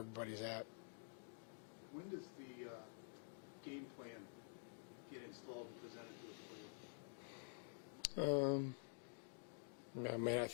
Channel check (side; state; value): right; silent; digital silence